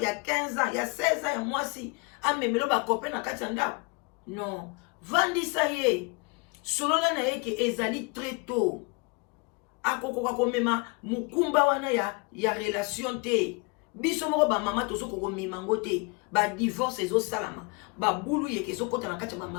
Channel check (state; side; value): quieter; right; 29.5 dB